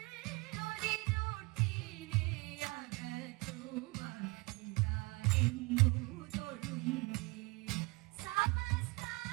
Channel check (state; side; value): quieter; left; 25.8 dB